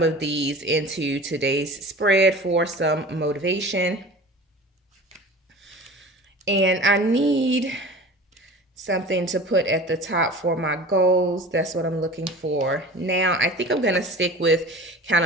of these into today's spread for some motivation. And I need something to put at the top for my goals. That's what I'm looking for. Now, I think I'm going to stick with kind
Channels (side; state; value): both; normal; correlation 0.39